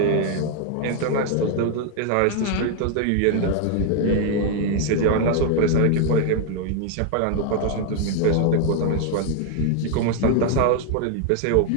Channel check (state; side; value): different; both; correlation 0.00